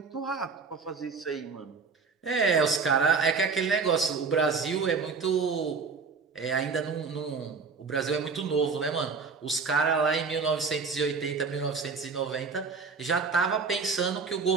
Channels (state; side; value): quieter; left; 5.0 dB